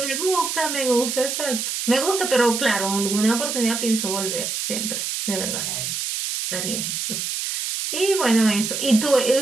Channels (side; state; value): right; noise; hiss, 3 dB below the sound